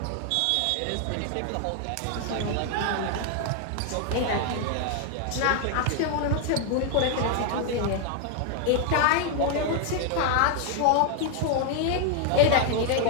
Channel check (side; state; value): both; different; correlation 0.00